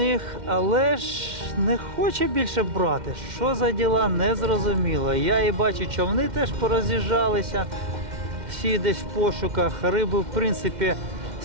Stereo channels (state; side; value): late; left; 2.1 ms